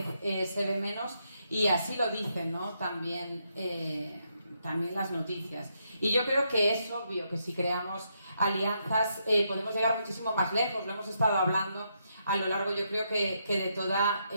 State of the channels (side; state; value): both; inverted; correlation -0.79